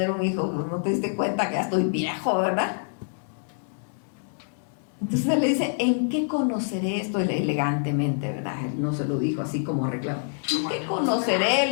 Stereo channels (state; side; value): silent; right; 61 dB below the other